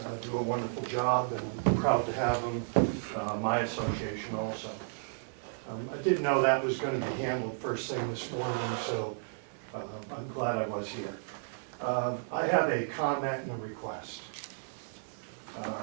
do a wonderful job, and I'm proud to have them, my association also. I didn't know that was going to be handled first thing this morning, so I'm glad I was here. I have a comment and a request.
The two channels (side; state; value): left; silent; 56 dB below the other